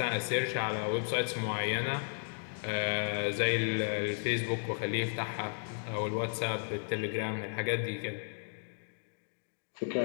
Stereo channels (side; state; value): right; silent; digital silence